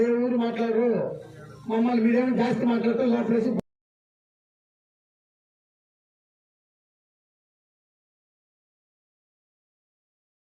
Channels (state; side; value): identical; both; correlation 1.00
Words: ఏ ఊరు మాట్లాడరు, మమ్మల్ని మీరేమో జాస్తి మాట్లాడతారు లోపలేసి